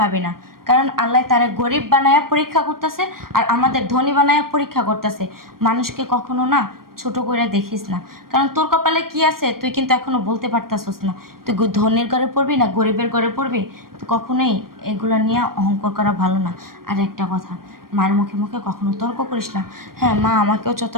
না। কারণ আল্লাহ তারা গরিব বানায়া পরীক্ষা করতেছে, আর আমাদের ধনী বানায়া পরীক্ষা করতেছে। মানুষকে কখনো না ছোট করে দেখিস না, কারণ তোর কপালে কি আছে তুই কিন্তু এখনো বলতে পারতাছস না। তুই ধনীর ঘরে পড়বি না গরিবের ঘরে পড়বি, তো কখনোই এগুলো নিয়ে অহংকার করা ভালো না। আর একটা কথা, মার মুখে মুখে কখনো তর্ক করিস না। হ্যাঁ, মা আমাকেও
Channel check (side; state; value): left; late; 0.92 ms